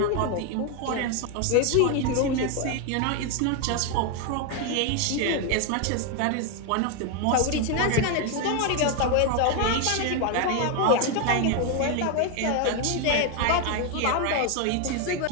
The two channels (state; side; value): different; both; correlation 0.01